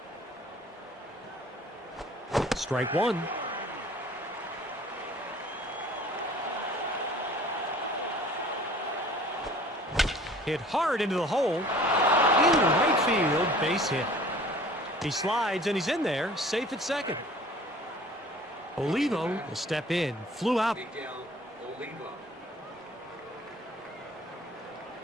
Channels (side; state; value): both; normal; correlation 0.49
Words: Strike one. Hit hard into the hole. Into right field, base hit. He slides and he's in there, safe at second. Olivo will step in, flew out. Miguel Olivo.